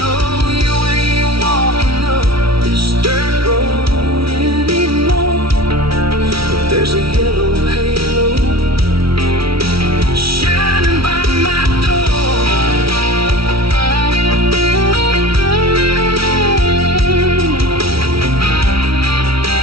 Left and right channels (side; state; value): left; late; 0.75 ms